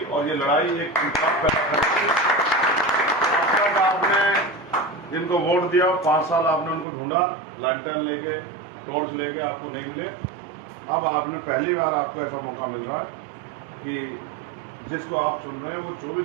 और ये लड़ाई एक इंसाफ पैदा करेगी। आपने जिनको वोट दिया, 5 साल आपने उनको ढूंढा, लैंटर्न लेके, टॉर्च लेके, आपको नहीं मिले। अब आपने पहली बार आपको ऐसा मौका मिल रहा है कि जिसको आप चुन रहे हैं वो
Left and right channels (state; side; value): drops out; left; at 6.9 s